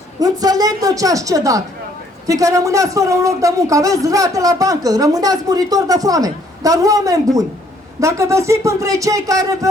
Înțeleg de ce ați cedat, fiindcă rămâneați fără un loc de muncă, aveți rate la bancă, rămâneați muritori de foame. Dar oameni buni, dacă veți fi între cei care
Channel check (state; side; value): normal; both; correlation 0.64